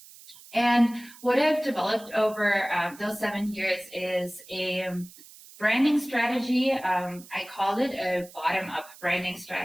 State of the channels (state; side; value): noise; right; hiss, 20 dB below the sound